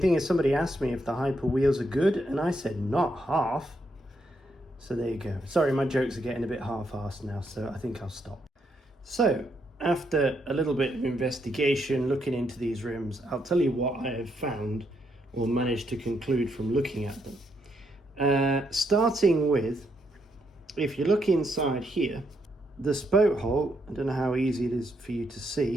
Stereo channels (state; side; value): normal; both; correlation 0.77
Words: thing is, somebody asked me if the Hyper Wheels are good, and I said not half. So there you go. Sorry, my jokes are getting a bit half-assed now, so I think I'll stop. So after a little bit of investigation, looking into these rims, I'll tell you what I have found or managed to conclude from looking at them. Starting with, if you look inside here, the spoke hole, I don't know how easy it is for you to